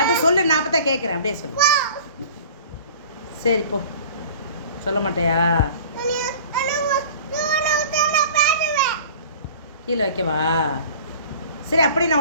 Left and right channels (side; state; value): both; inverted; correlation -0.44